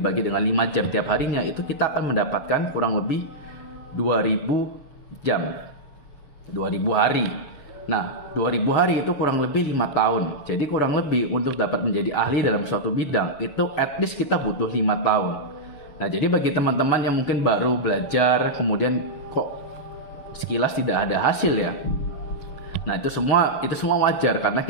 dengan 5 jam tiap harinya, itu kita akan mendapatkan kurang lebih 2.000 jam. 2.000 hari. Nah, 2.000 hari itu kurang lebih 5 tahun. Jadi kurang lebih untuk dapat menjadi ahli dalam suatu bidang, itu at least kita butuh 5 tahun. Nah, jadi bagi teman-teman yang mungkin baru belajar, kemudian kok sekilas tidak ada hasil ya. Nah, itu semua wajar karena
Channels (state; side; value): late; right; 6.9 ms